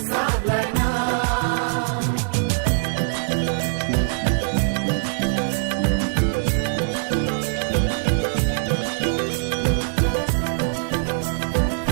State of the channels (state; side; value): silent; left; 64 dB below the other